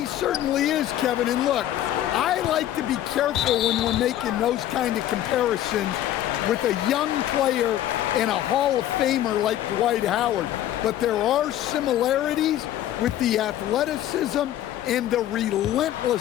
certainly is, Kevin. And look, I like to be careful when we're making those kind of comparisons with a young player and a Hall of Famer like Dwight Howard. But there are similarities with the athleticism and the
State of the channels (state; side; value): quieter; right; 12.5 dB